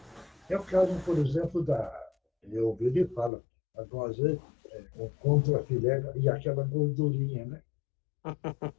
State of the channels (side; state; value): right; drops out; at 3.3 s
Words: É o caso, por exemplo, eu ouvi ele fala, às vezes, contra filé e aquela gordurinha, né?